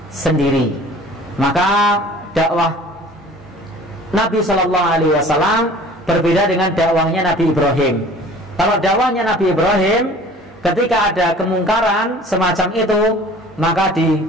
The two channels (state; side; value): normal; both; correlation 0.47